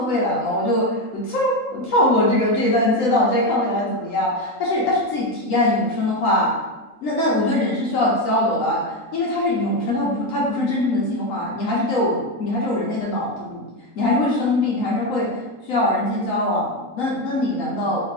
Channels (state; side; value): late; right; 3.8 ms